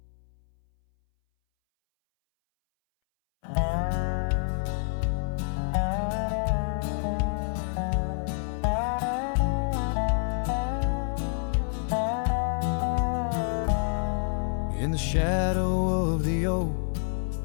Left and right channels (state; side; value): silent; right; 60 dB below the other